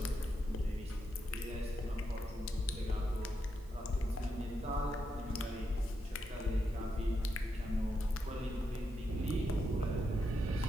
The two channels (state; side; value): noise; right; hiss, 27 dB below the sound